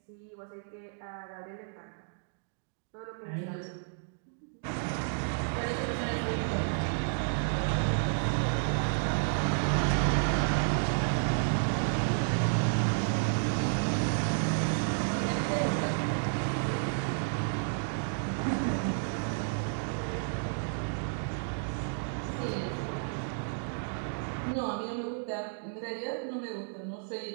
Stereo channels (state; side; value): silent; left; digital silence